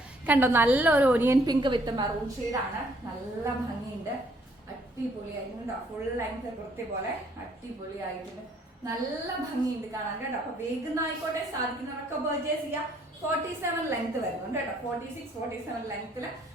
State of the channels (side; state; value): both; normal; correlation 0.65